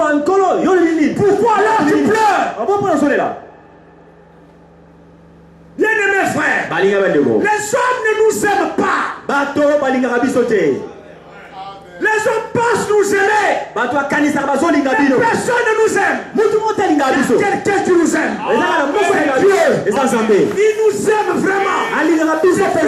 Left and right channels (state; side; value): identical; both; correlation 1.00